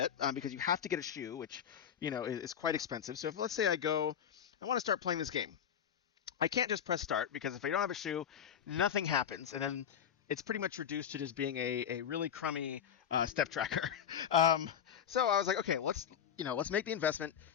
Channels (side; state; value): right; quieter; 8.6 dB